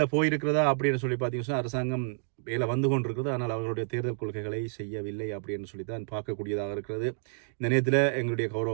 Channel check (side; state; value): left; silent; 58 dB below the other